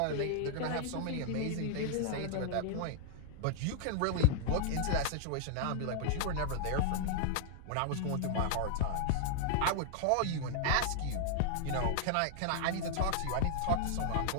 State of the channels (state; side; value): different; both; correlation -0.01